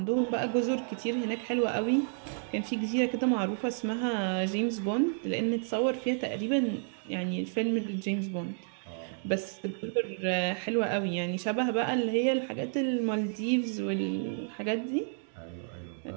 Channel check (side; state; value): left; silent; 57 dB below the other